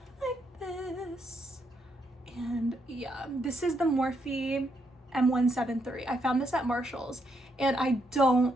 like this. And yeah, this is the Morphe M173. I found this at Marshall's, and I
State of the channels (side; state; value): both; normal; correlation 0.77